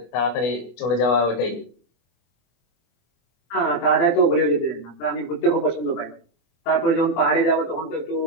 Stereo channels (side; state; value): right; late; 24 ms